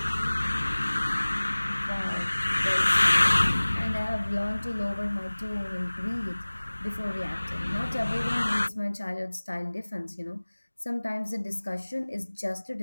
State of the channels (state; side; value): inverted; both; correlation -1.00